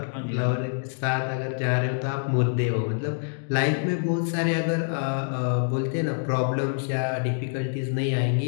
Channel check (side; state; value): right; silent; 61 dB below the other